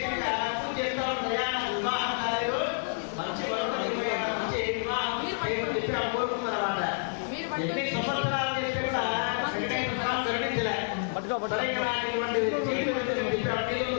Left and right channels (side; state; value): right; silent; 58 dB below the other